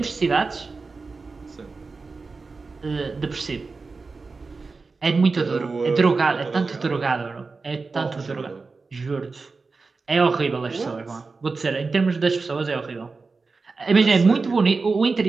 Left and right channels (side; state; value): left; quieter; 4.2 dB